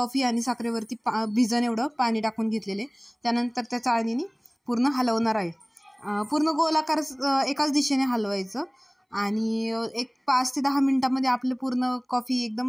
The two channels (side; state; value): both; identical; correlation 1.00